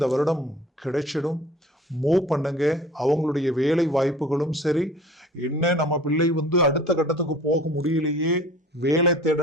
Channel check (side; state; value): both; normal; correlation 0.46